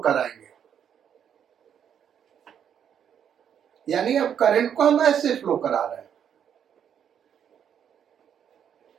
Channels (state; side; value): quieter; left; 8.6 dB